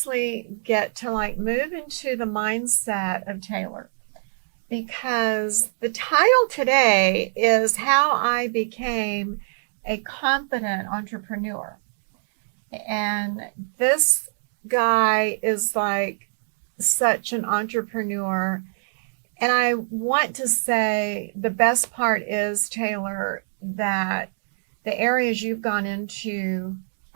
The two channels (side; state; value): left; silent; digital silence